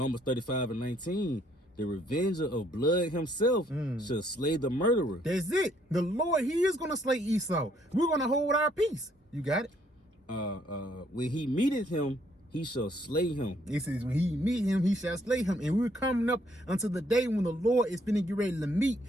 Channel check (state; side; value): normal; both; correlation 0.67